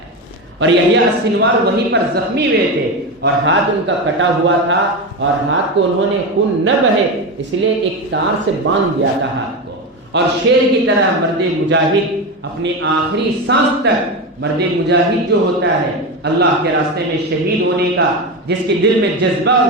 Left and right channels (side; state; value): both; normal; correlation 0.18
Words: اور یحییٰ السنوار وہیں پر زخمی ہوئے تھے اور ہاتھ ان کا کٹا ہوا تھا، اور ہاتھ کو انہوں نے خون نہ بہے اس لیے ایک تار سے باندھ دیا تھا ہاتھ کو. اور شیر کی طرح مرد مجاہد اپنی آخری سانس تک، مرد مجاہد جو ہوتا ہے اللہ کے راستے میں شہید ہونے کا، جس کے دل میں جذبہ اور